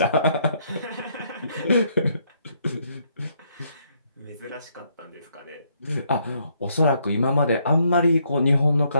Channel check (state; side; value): inverted; both; correlation -0.72